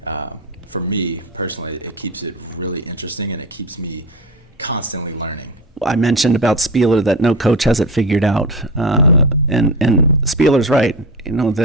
for me personally, it keeps it really interesting, and it keeps me constantly learning. I mentioned about Spieler that no coach has it figured out, and Spieler's right.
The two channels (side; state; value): both; normal; correlation 0.24